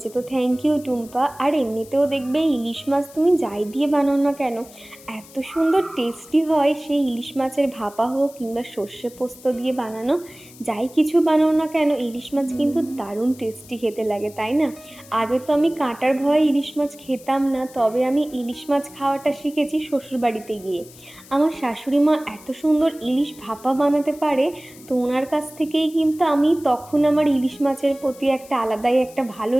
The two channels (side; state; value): left; noise; hiss, 21 dB below the sound